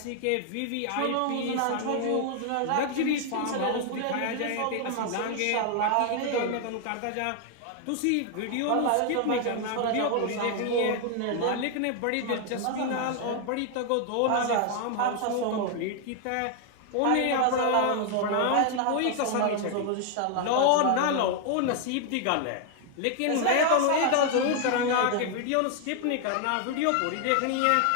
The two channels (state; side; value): different; both; correlation 0.00